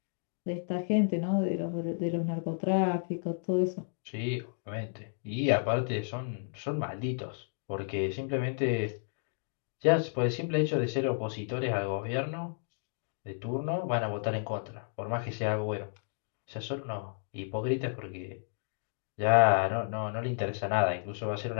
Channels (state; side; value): silent; right; digital silence